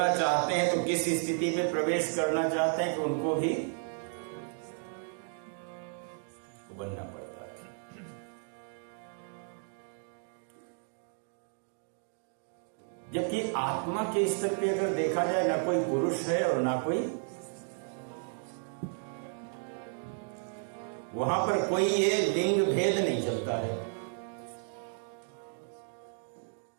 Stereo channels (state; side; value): silent; left; 56 dB below the other